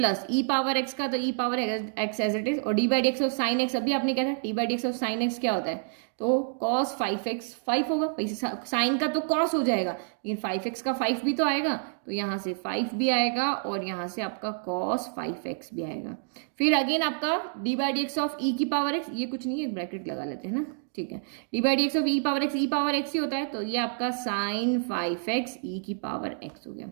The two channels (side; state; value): left; silent; digital silence